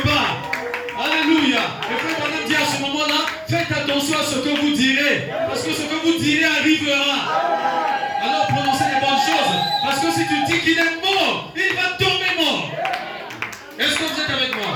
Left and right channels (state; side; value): identical; both; correlation 1.00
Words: part. Alléluia. Et frère Branham dit à ce moment-là, faites attention à ce que vous direz. Parce que ce que vous direz arrivera. Alors prononcez les bonnes choses. Parce que si tu dis qu'il est mort, il va tomber mort. Est-ce que vous êtes avec